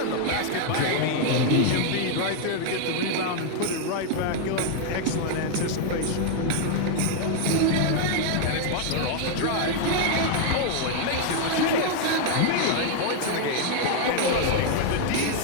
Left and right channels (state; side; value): different; both; correlation 0.00